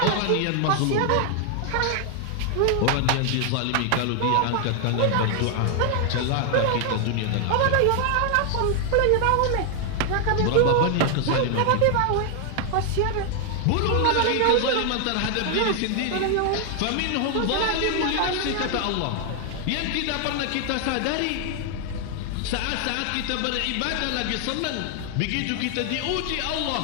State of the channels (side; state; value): both; different; correlation 0.00